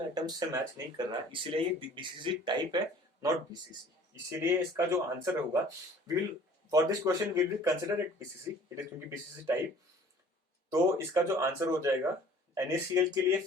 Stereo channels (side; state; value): both; normal; correlation 0.50